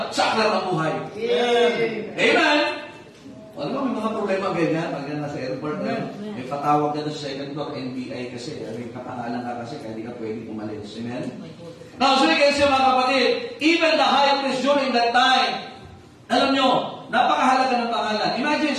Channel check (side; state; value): both; identical; correlation 1.00